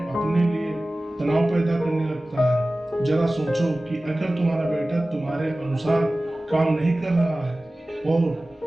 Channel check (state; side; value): normal; both; correlation 0.97